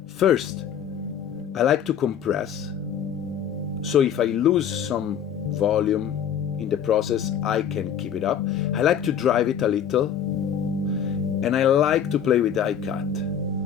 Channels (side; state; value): right; quieter; 8.5 dB